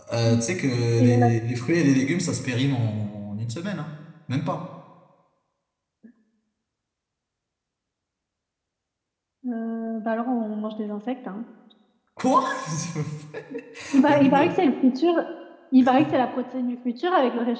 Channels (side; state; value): both; identical; correlation 1.00